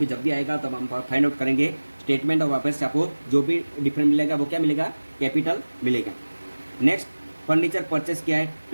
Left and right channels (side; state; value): both; inverted; correlation -1.00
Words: जब भी आएगा तब हम फाइंड आउट करेंगे. स्टेटमेंट ऑफ अफेयर्स से आपको जो भी डिफरेंट मिलेगा वो क्या मिलेगा, कैपिटल मिलेगा. नेक्स्ट, फर्नीचर परचेस किया है